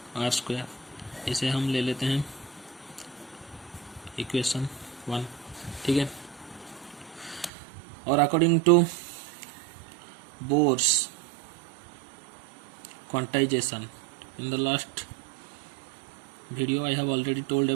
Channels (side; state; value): left; drops out; at 7.5 s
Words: इसे हम ले लेते हैं इक्वेशन 1. ठीक है. और according to Bohr's quantization, in the last video I have already told